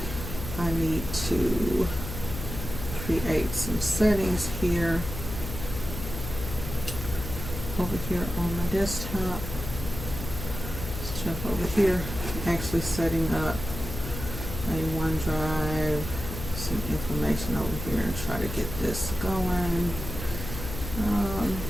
I need to create some settings here over here on my desktop. Let's jump over here, actually setting up a OneDrive, some information over here, and try to get this going.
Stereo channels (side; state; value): left; noise; hum, 7 dB below the sound